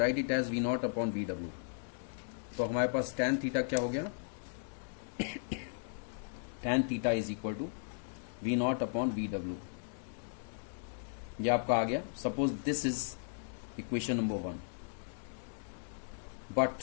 it as V0 upon VW. तो हमारे पास tan थीटा क्या हो गया, tan theta is equal to V0 upon VW. ये आपका आ गया. Suppose this is equation number 1. But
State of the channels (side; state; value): right; silent; digital silence